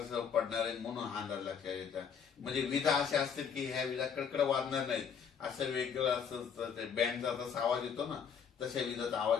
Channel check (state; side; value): quieter; right; 7.0 dB